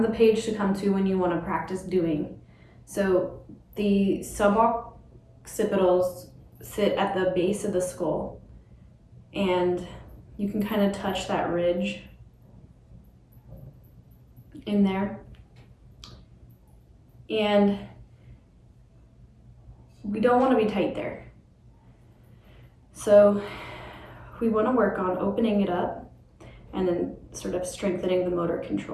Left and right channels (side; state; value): both; identical; correlation 1.00